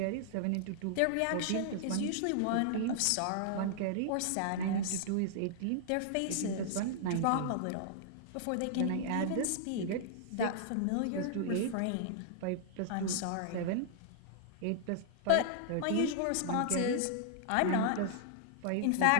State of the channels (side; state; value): both; different; correlation -0.01